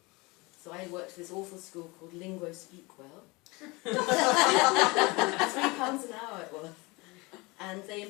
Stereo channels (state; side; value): quieter; right; 24.9 dB